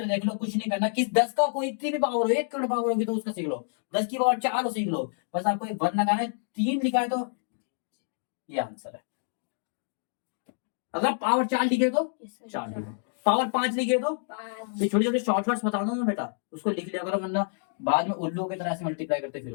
देख लो, कुछ नहीं करना, किस 10 का कोई इतनी भी पावर हो, 1 करोड़ पावर होगी तो उसका सीख लो, 10 की पावर 4 हो सीख लो, बस आपको एक वन लगाना है, 3 लिखा है तो ये आंसर है। अगर पावर 4 लिखे तो यस सर। 4 लिखे, पावर 5 लिखे तो 5। ये छोटे छोटे शॉर्टकट्स बता दो ना बेटा, उसको लिख लिया करो, वरना बाद में उल्लू की तरह से मल्टीप्लाई करते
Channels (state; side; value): silent; right; digital silence